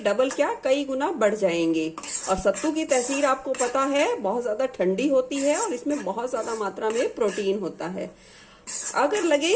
क्या कई गुना बढ़ जाएंगे। और सत्तू की तसीर आपको पता है बहुत ज्यादा ठंडी होती है और इसमें बहुत ज्यादा मात्रा में प्रोटीन होता है। अगर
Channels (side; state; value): both; identical; correlation 1.00